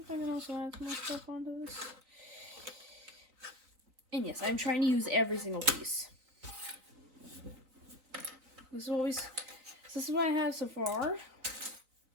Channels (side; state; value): left; late; 3.9 ms